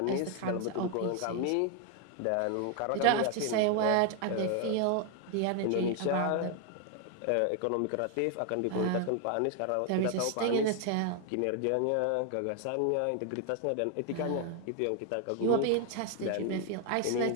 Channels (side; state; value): both; different; correlation 0.00